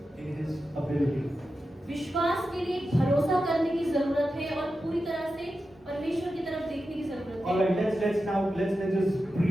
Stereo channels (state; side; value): normal; both; correlation 0.91